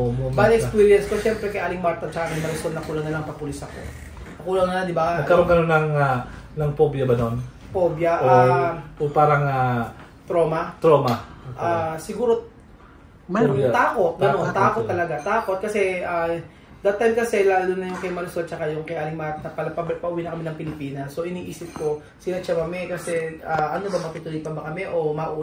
Bad experience ko, siyempre kay Aling Marta at kay Marisol, nakulang na lang papulis ako. Nakulang na, di ba? Nagkaroon ka ng phobia ba nun? Phobia. O parang trauma. Siguro, takot. Takot talaga. Takot kasi that time kasi lalo na yung kay Marisol tsaka yung kay Aling Marta, pauwi na kami ng Pilipinas. So iniisip ko, sila siya mami kasi ano ba, matutuloy pa ba kami o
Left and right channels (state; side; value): identical; both; correlation 1.00